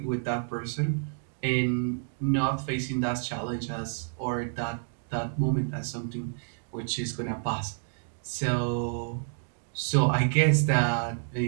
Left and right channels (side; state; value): left; silent; digital silence